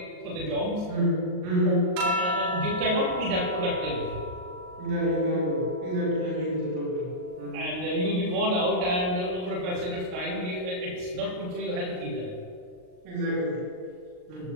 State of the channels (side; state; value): left; late; 39 ms